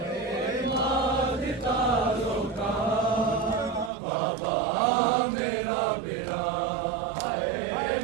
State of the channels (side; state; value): left; drops out; at 3.9 s